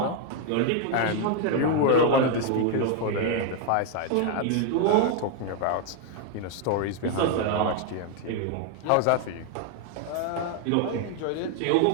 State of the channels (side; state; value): both; different; correlation 0.01